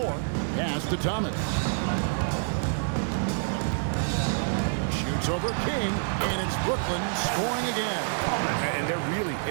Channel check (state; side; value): silent; left; digital silence